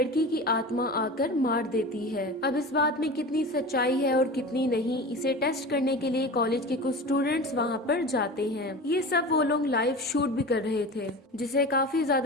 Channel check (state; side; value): normal; both; correlation 0.32